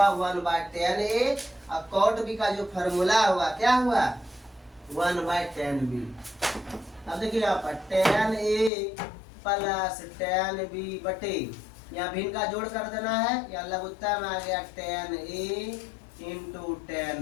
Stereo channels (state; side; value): drops out; right; at 8.7 s